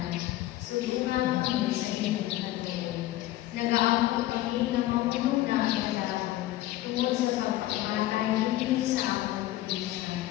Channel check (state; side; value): quieter; right; 15.5 dB